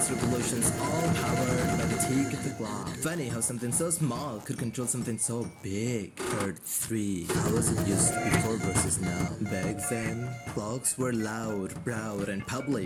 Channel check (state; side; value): identical; both; correlation 1.00